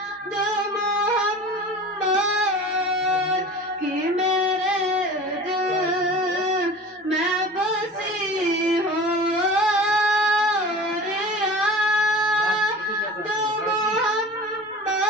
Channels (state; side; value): normal; both; correlation 0.38